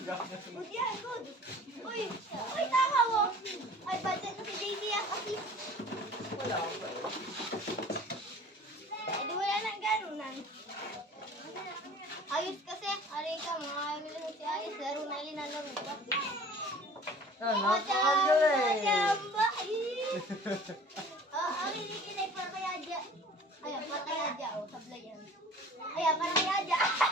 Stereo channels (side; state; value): both; normal; correlation 0.47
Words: Good yan, good. Uy, tama mo. Ay, budget na si JD yan kasi. Wala pa eh. Eh, di wala nang ganunan. Ayos kasi. Aray ka, mga amil si Ayos. Laro na linalaro pa. Ah, napakagaling. Chamba! Ang hinikinay para kay Adja. Ayan, para kay Adja. O, sablay yan. Ayan, para kay Adja.